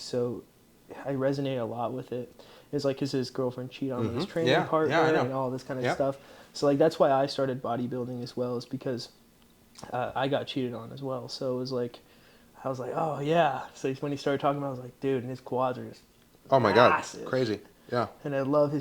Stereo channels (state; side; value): identical; both; correlation 1.00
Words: I resonate a lot with it. It's like his girlfriend cheated on him with his training Yeah. partner Yeah, I know. and all this kind of Yeah. stuff. So like that's why I started bodybuilding as well, is because I got cheated on as well. So it was like I was like, oh yeah. So when he started talking about it, I was like, dude, and his quads are just Oh my massive. God. Crazy. Yeah. And I love